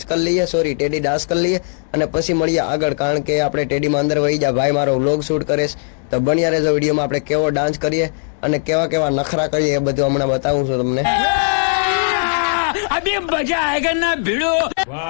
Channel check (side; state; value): right; silent; digital silence